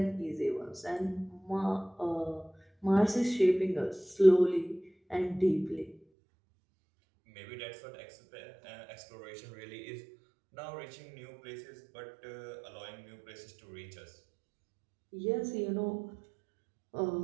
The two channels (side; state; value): left; drops out; at 6.0 s